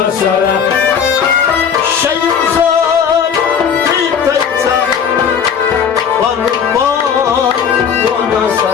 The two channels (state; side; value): quieter; right; 7.3 dB